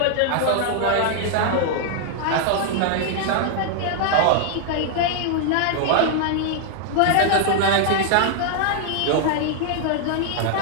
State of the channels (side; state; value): both; different; correlation 0.00